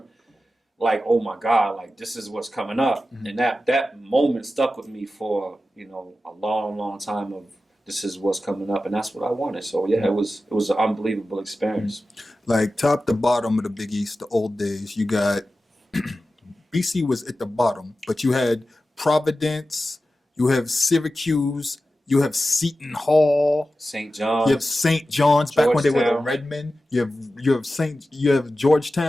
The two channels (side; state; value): both; normal; correlation 0.93